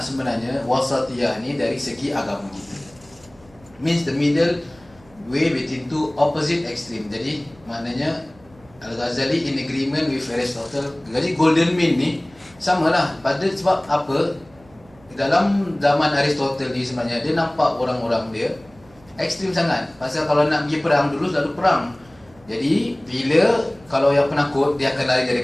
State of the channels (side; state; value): right; noise; hum, 27 dB below the sound